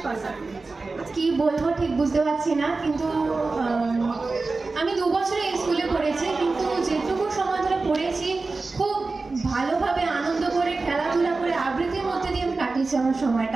পাস আউট। কি বলবো ঠিক বুঝতে পারছি না, কিন্তু আমি 2 বছরে এই স্কুলে পড়েছি, কিন্তু যেটুকু সময় ধরে পড়েছি খুব ভালোভাবে আনন্দ করে খেলাধুলা করে আবৃত্তির মধ্যে দিয়ে আমি কাটিয়েছি আমার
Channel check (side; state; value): left; quieter; 3.8 dB